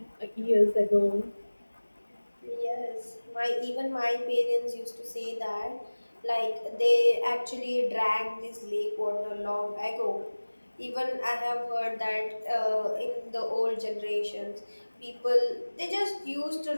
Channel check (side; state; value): both; inverted; correlation -1.00